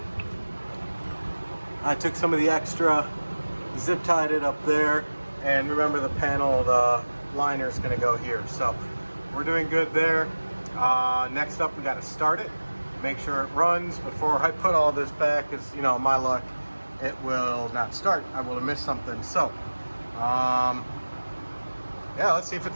I took some of the extra, zip tied it up there, and remember the panel, the liner is going to go here. So we're doing good there. Next up, we got to start it, make sure it runs before I put all this back, because, you know, my luck, it will not start. I will have missed something. So yeah, let's see if it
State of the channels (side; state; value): both; inverted; correlation -1.00